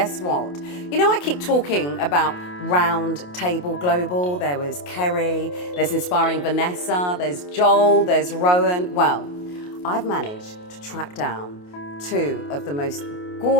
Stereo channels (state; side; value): late; right; 28 ms